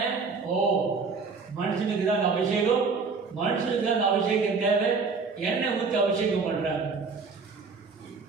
மனுஷனுக்கு தான் அந்த அபிஷேகம், மனுஷனுக்கு தான் அந்த அபிஷேகம் தேவை. எண்ணெய் ஊற்றி அபிஷேகம் பண்ணுறாங்க.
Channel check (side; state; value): left; quieter; 4.7 dB